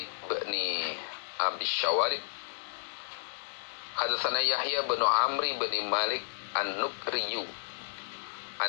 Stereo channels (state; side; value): silent; right; digital silence